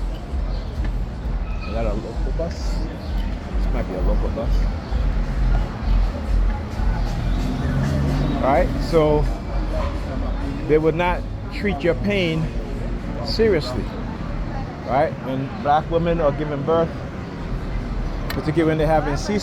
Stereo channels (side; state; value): both; identical; correlation 1.00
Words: that a local bus? This might be a local bus. All right, so they would not treat your pain seriously, right? When black women are giving birth, particularly when they're having